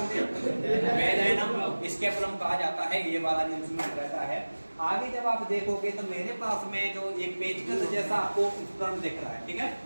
हैं? वेजाइना स्कैपुलम कहा जाता है, ये वाला जो इंस्ट्रूमेंट रहता है। आगे जब आप देखोगे तो मेरे पास में जो एक पेचकस जैसा आपको उपकरण दिख रहा है, ठीक है।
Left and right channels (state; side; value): inverted; both; correlation -1.00